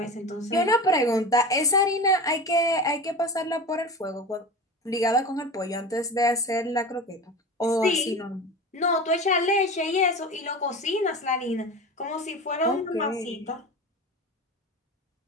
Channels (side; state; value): both; normal; correlation 0.30